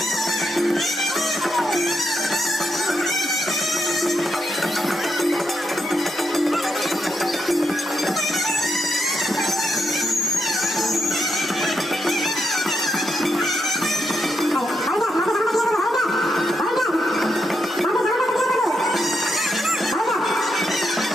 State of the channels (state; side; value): normal; both; correlation 0.82